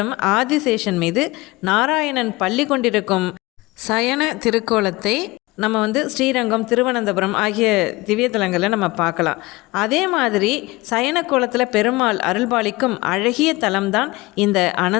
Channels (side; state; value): right; quieter; 21.6 dB